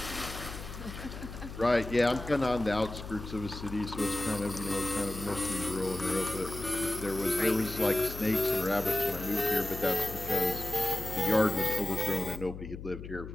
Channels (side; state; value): left; noise; hum, 10 dB below the sound